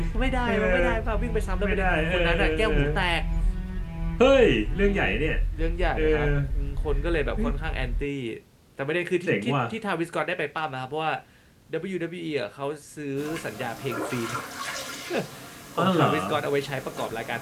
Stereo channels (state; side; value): identical; both; correlation 1.00